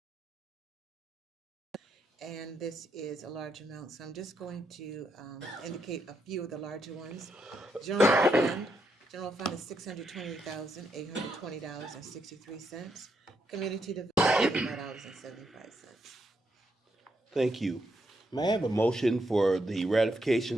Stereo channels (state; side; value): normal; both; correlation 0.79